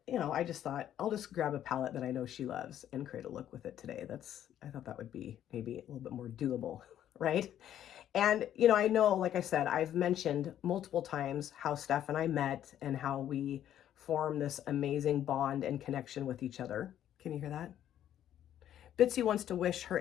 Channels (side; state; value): right; quieter; 11.0 dB